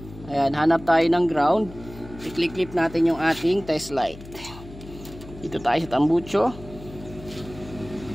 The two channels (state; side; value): noise; left; hum, 16 dB below the sound